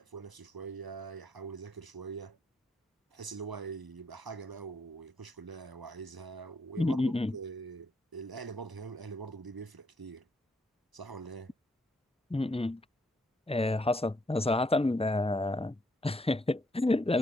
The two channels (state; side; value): normal; both; correlation 0.73